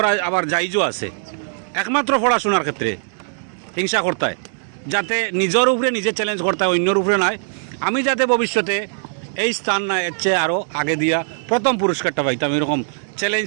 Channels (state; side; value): silent; left; digital silence